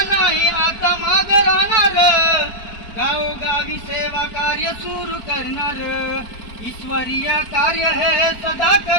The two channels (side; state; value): right; late; 4.4 ms